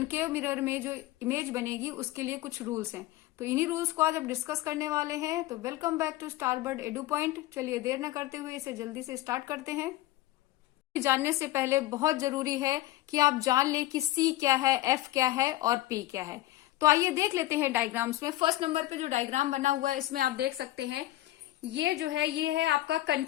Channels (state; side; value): quieter; right; 16.2 dB